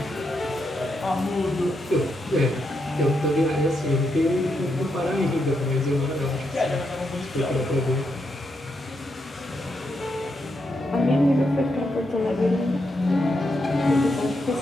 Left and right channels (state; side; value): normal; both; correlation 0.82